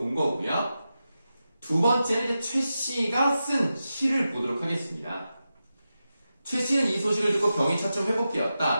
거고요. 두 번째는 이제 최 씨가 쓴 시를 보도록 하겠습니다. 최 씨는 이 소식을 듣고 병이 차츰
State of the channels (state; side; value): inverted; both; correlation -0.91